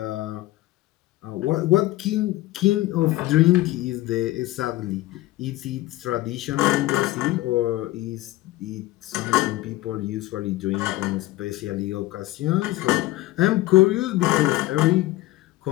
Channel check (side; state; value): right; quieter; 17.5 dB